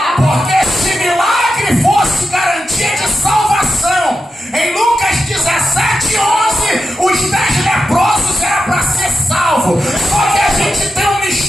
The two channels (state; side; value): normal; both; correlation 0.88